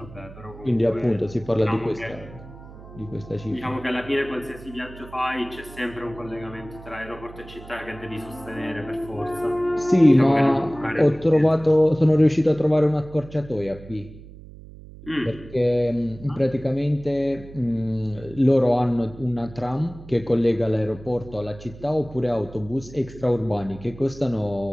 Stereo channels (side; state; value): right; noise; hum, 17 dB below the sound